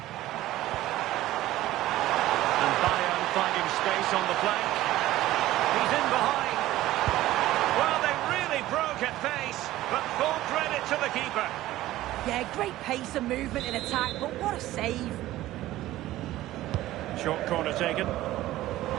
And Bayern finding space on the flank. He's in behind. Well, they really broke at pace, but full credit to the keeper. Yeah, great pace and movement in attack, but what a save. Short corner taken. Looking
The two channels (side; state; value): left; quieter; 15.5 dB